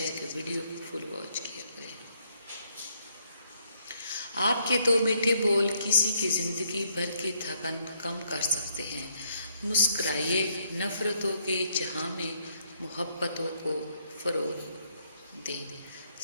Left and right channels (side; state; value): both; inverted; correlation -0.71